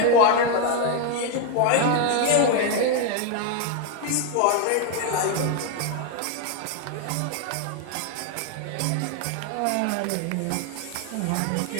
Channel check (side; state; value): both; different; correlation 0.01